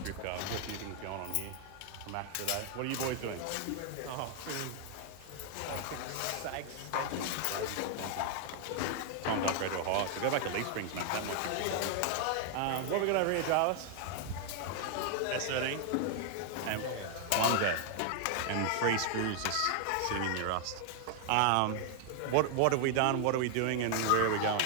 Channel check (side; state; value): both; different; correlation 0.00